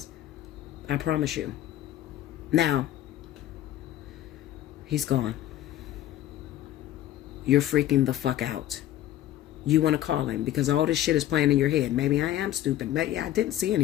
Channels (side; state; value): right; quieter; 13.2 dB